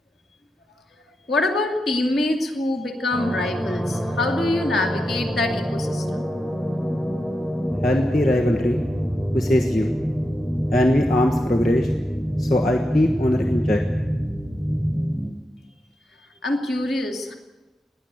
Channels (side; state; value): both; normal; correlation 0.87